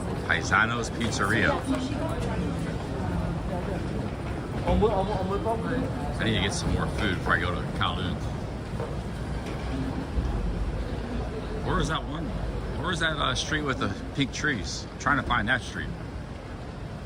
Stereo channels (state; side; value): identical; both; correlation 1.00